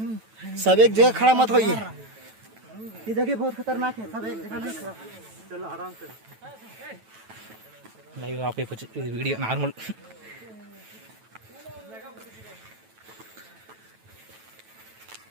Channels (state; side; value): late; left; 9.1 ms